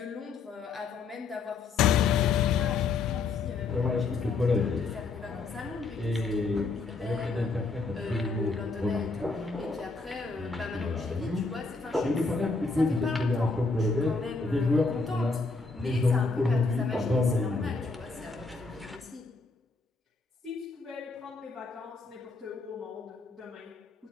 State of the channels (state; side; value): quieter; right; 4.1 dB